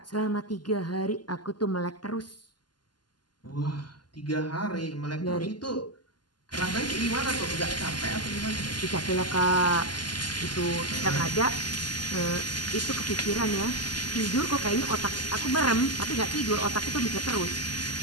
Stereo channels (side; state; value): right; late; 0.71 ms